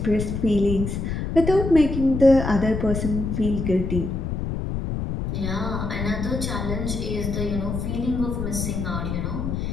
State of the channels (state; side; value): noise; left; rumble, 3 dB below the sound